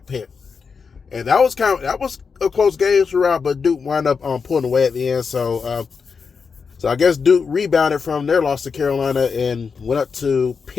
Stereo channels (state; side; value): quieter; right; 5.5 dB